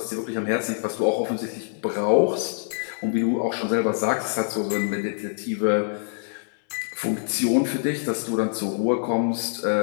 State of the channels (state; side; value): silent; right; 60 dB below the other